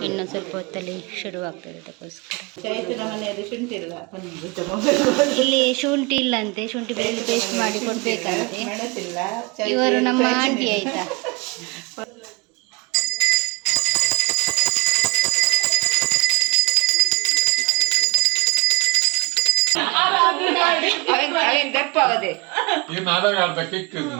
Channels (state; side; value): quieter; left; 26.5 dB